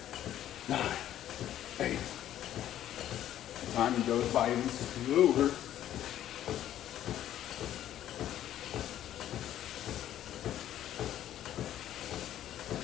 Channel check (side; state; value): right; quieter; 11.9 dB